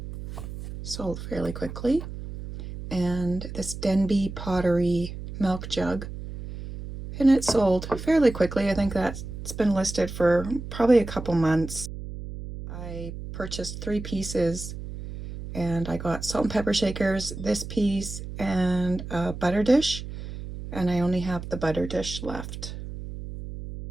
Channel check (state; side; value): noise; right; hum, 9 dB below the sound